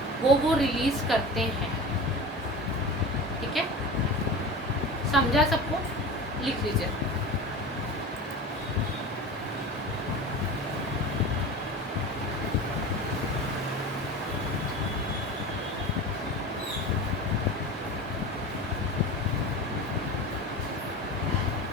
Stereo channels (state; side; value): normal; both; correlation 0.32